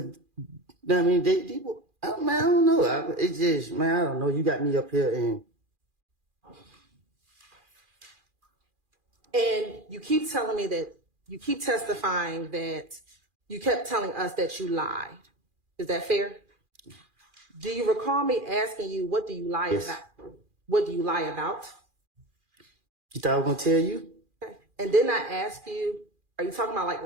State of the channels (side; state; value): left; late; 2.4 ms